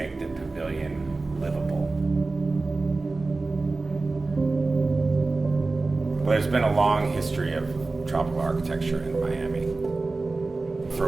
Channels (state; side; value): quieter; left; 3.5 dB